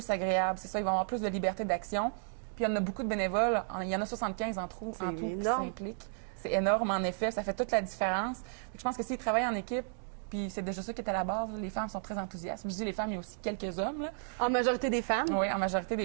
agréable. C'est ça, ils vont avoir plus de liberté d'action. Puis, il y en a beaucoup de bénévoles. Il y en a 75 en tout qui s'impliquent. C'est énorme, en effet. Ça fait toute la différence. Fait que je pense que s'ils travaillent en équipe, puis c'est déjà ça qui est à la base. Les femmes sont très enthousiastes. Je dis les femmes, il y a aussi quelques hommes. Là. En majorité des femmes? Oui, en majorité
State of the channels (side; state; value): left; silent; digital silence